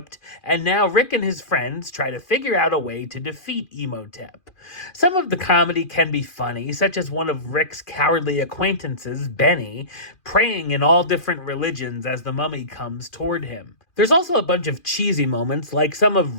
and now Rick and his friends try to figure out a way to defeat Imhotep. Some of the comedy can be funny, such as one of Rick's cowardly acquaintances, Benny, praying in all different religions as the mummy comes toward him. There's also a bunch of cheesy moments, like some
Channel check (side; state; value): right; late; 2.4 ms